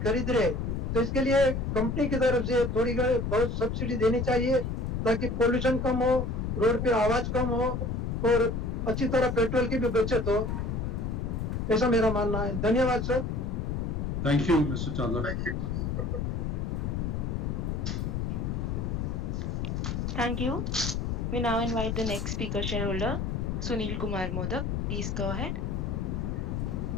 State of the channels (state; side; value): noise; left; rumble, 1 dB below the sound